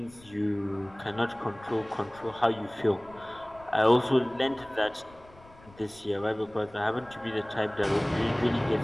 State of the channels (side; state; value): left; noise; rumble, 24 dB below the sound